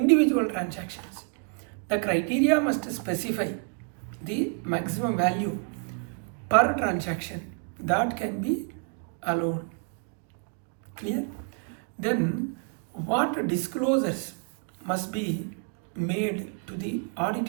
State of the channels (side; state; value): left; quieter; 36.0 dB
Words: transactions? The criteria must specify the maximum value per transaction that can be allowed. Clear? Then what disclosures must be made to the